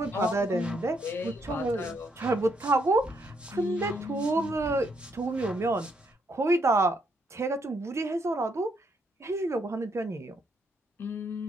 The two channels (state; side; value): normal; both; correlation 0.75